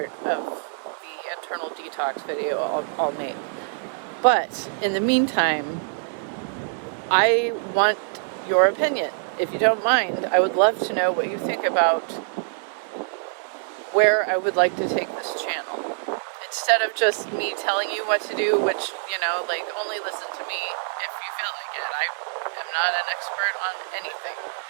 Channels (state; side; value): silent; left; 62 dB below the other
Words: of the internal detox video I'll make. But in the meantime, I want your opinion. If you don't mind, I would love to know what you think about where I would like to take this channel. Instead of just me telling you what to do, which, only listen to me if you feel like it. I am not an expert on anything,